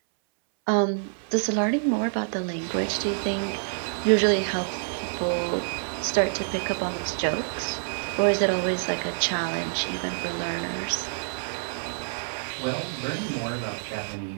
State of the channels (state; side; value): silent; left; 60 dB below the other